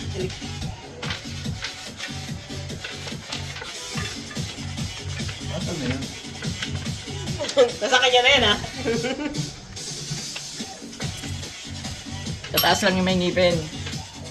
Asan na yun? Nasa kanya na yan, ha? Tataas lang yung may ngipin.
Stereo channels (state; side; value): identical; both; correlation 1.00